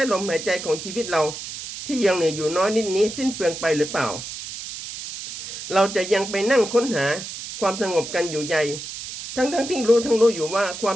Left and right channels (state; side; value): noise; right; hiss, 9 dB below the sound